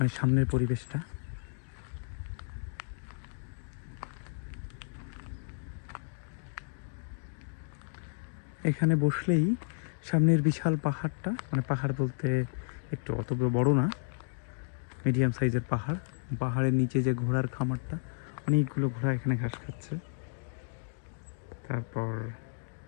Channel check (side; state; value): right; silent; digital silence